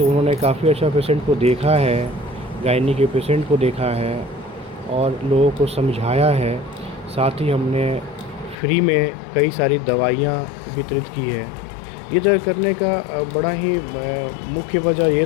उन्होंने काफ़ी अच्छा पेशेंट को देखा है, गायनी के पेशेंट को देखा है और लोगों को समझाया है। साथ ही हमने फ्री में कई सारी दवाइयाँ वितरित की है। ये जो करने का बड़ा ही मुख्य वजह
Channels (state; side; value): drops out; right; at 8.6 s